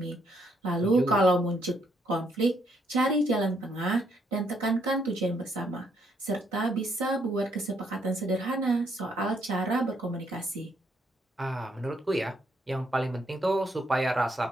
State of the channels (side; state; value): both; normal; correlation 0.73